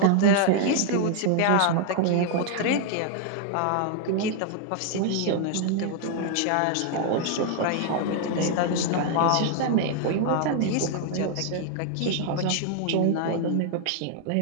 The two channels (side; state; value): both; different; correlation 0.00